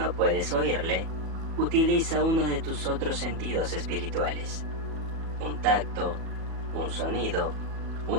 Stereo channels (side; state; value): left; late; 37 ms